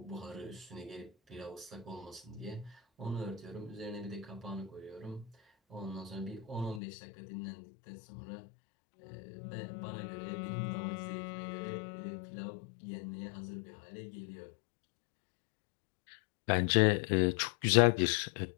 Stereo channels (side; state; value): right; drops out; at 6.8 s